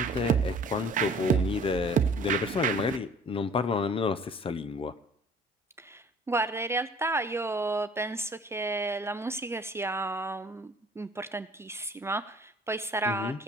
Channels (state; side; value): normal; both; correlation 0.51